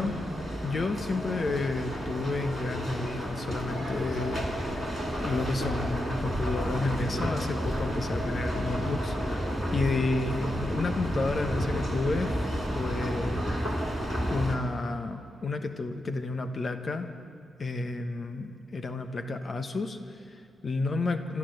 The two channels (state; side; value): normal; both; correlation 0.86